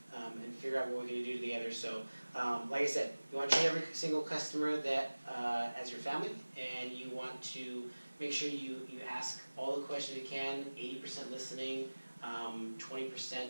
and figure out what we're going to do together. So like I said, you want to treat every single customer that as your family, and you want to make sure you ask all the questions you can, 80% listening,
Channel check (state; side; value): inverted; both; correlation -1.00